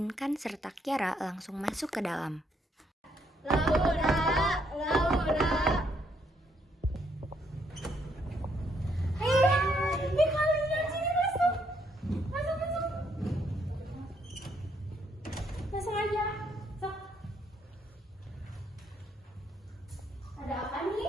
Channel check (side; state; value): both; normal; correlation 0.72